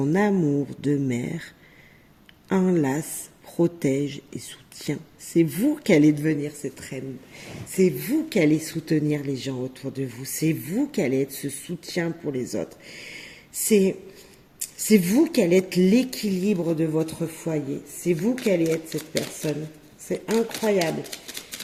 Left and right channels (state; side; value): identical; both; correlation 1.00